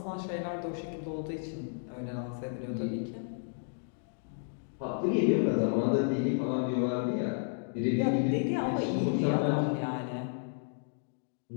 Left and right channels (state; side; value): silent; right; digital silence